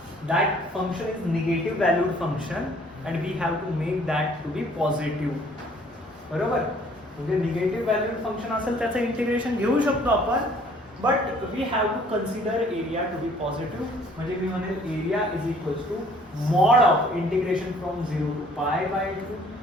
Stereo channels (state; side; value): normal; both; correlation 0.58